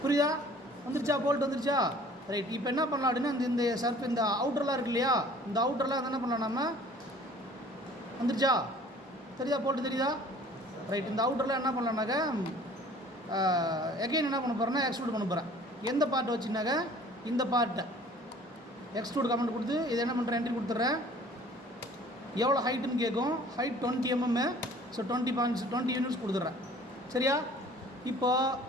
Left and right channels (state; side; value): normal; both; correlation 0.51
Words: புரியுதா? வந்துருச்சா? போல்ட் வந்துருச்சா? ரைட். இப்போ என்ன பண்ணலாம் அப்படின்னா இந்த அவுட்டர்லாம் இருக்கு இல்லையா, இந்த அவுட்டர்லாம் என்ன பண்ணலாம், நம்ம வந்துருச்சா? தெரியுதா? போல்ட்டு தெரியுதா? ரைட். இந்த அவுட்டர்லாம் என்ன பண்ணலான்னாக்க எகைன் என்ன பண்ண போகிறேன்னா எக்ஸ்ட்ரூட் பண்ண போகிறேன். எந்த பார்ட்டை வச்சுனாக்க இந்த பார்ட்டை எக்ஸ்ட்ரூட் கமெண்ட் கொடுத்து இதை என்ன பண்ணுறேன், என்ட்ரி கொடுத்துட்றேன். எவ்வளோ ஹைட்டுன்னு கேட்கும். Height 20 mm. ஸோ 20 யூனிட்ஸ் கொடுத்துட்றேன், சரியா?